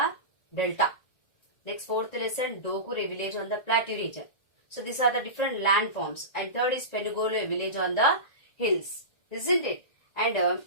delta. Next, fourth lesson, Dokkur, a village on the plateau region. So these are the different landforms. And third is Penugolu, a village on the hills. Isn't it? And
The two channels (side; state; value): right; late; 1.9 ms